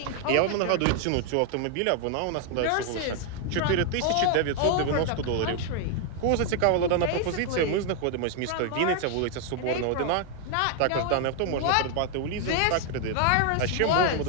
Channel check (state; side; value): different; both; correlation 0.00